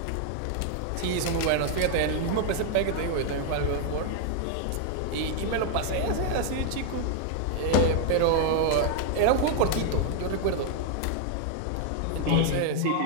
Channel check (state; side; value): different; both; correlation 0.00